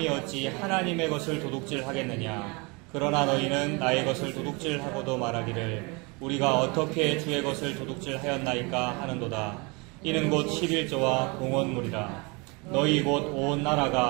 어찌 하나님의 것을 도둑질하겠느냐. 그러나 너희는 나의 것을 도둑질하고도 말하기를 우리가 어떻게 주의 것을 도둑질하였나이까 하는도다. 이는 곧 11조와 공헌물이라. 너희 곧 온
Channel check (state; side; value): quieter; left; 28.8 dB